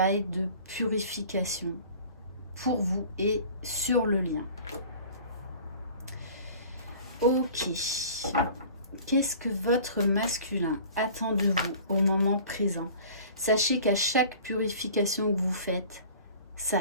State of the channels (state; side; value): inverted; both; correlation -0.45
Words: de purification pour vous et sur le lien. Ok. Qu'est-ce que votre masculin attend de vous au moment présent? Sachez qu'à chaque purification que vous faites, ça